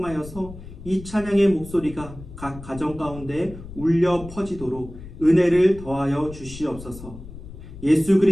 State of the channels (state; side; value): noise; left; rumble, 14 dB below the sound